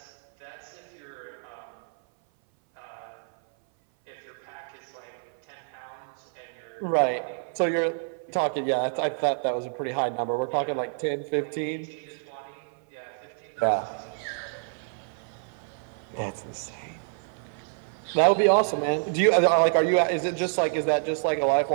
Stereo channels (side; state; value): left; silent; 57 dB below the other